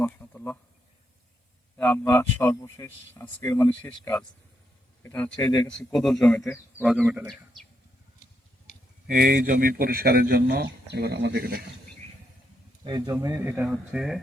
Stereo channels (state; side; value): normal; both; correlation 0.80